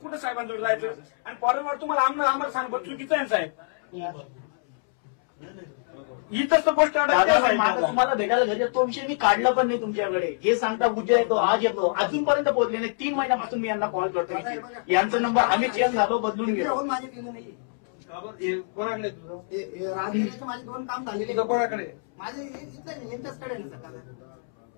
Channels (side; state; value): right; silent; 61 dB below the other